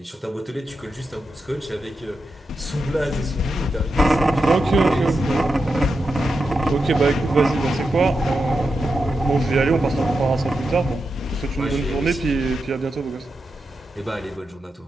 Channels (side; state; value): both; normal; correlation 0.88